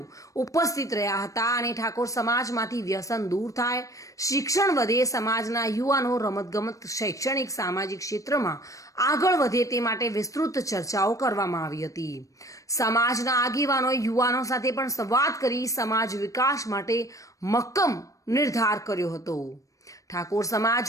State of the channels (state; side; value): late; right; 0.16 ms